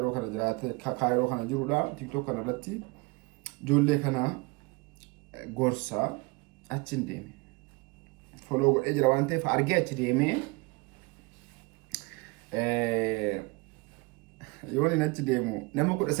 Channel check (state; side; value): quieter; left; 26.1 dB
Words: kana jiraate kaayiroo kana jirudha. TikTok kanarratti ijoollee kana gorsaa achiin deeme. Foloo godhee jira waan ta'eef argee achi deemee yoon inni achi deemu nama